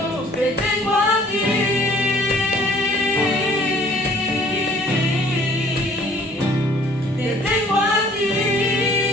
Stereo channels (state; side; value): normal; both; correlation 0.55